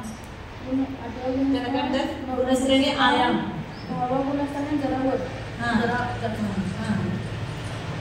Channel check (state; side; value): identical; both; correlation 1.00